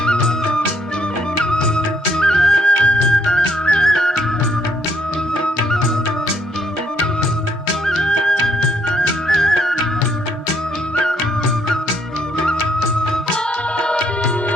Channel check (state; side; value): normal; both; correlation 0.70